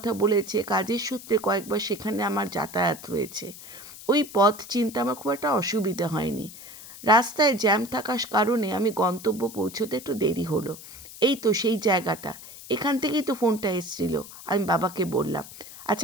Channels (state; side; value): noise; left; hiss, 15 dB below the sound